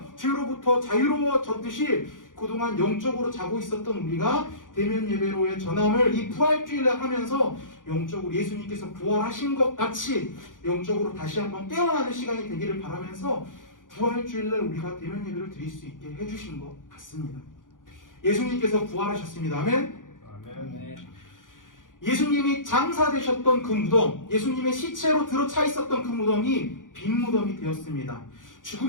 죄로부터 자유로워졌듯이 그동안 영적으로 자고 있었던 우리가 대면 예배로의 전함을 이 부활주일날 하면서 영적으로 예수님께서 부활하신 것 같이 영적으로 다시 한번 깨어나는 시간이 되기를 바라면서 부활주일날 우리가 대면 예배를 드릴 수 있게 해주신 것 같습니다. 예수님께서 부활하셨습니다. 아멘. 아멘. 예수님이 장사되셨던 그 무덤, 예수님의 시체로 들어차 있었던 그 무덤이 빈 무덤이 되었습니다.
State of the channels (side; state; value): right; late; 0.89 ms